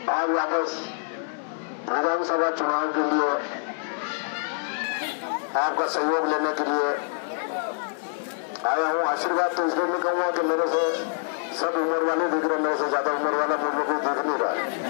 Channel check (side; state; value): right; silent; 61 dB below the other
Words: आज वापस विधानसभा चुनाव के लिए आपका सहयोग लेने के लिए आया हूँ। आशीर्वाद तो इसलिए नहीं कहूँगा कि मेरे से सब उम्र वाले दिख रहे, मेरे से ज्यादा उम्र वाला मुझे कोई दिख नहीं रहा है,